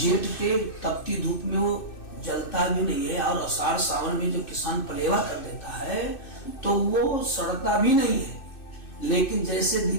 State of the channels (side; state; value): right; late; 2.6 ms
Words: के तपती धूप में वो जलता भी नहीं है, और आषाढ़ सावन में जब किसान पलेवा कर देता है तो वो सड़ता भी नहीं है। लेकिन जैसे